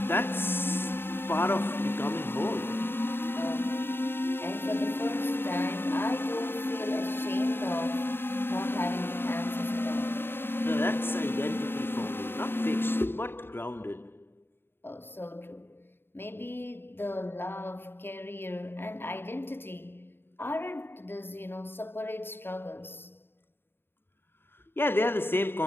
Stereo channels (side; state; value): right; late; 0.11 ms